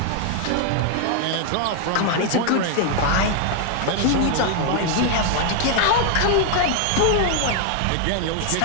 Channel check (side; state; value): both; different; correlation 0.00